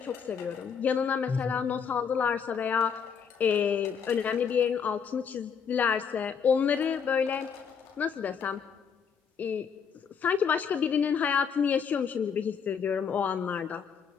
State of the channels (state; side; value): quieter; right; 6.8 dB